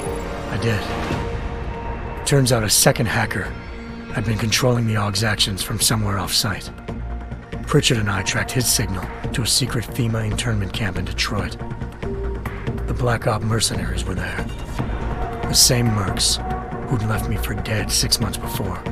I did. Turns out a second hacker had been controlling the Aug's actions from somewhere off-site. Pritchard and I tracked his signal to a secret FEMA internment camp in Detroit. The Black Op mercenaries were there. The same mercs who'd left me for dead 6 months before.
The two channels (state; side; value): identical; both; correlation 1.00